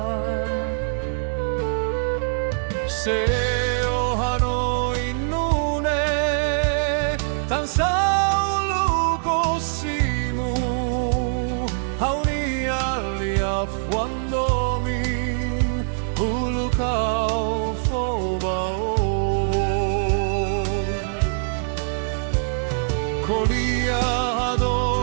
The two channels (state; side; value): silent; left; digital silence